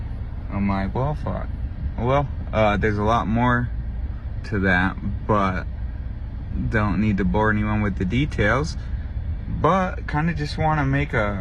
I'm like, well, fuck. Well, there's a lot more to that, but don't need to bore anyone with the details. But kind of just want to make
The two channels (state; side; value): identical; both; correlation 1.00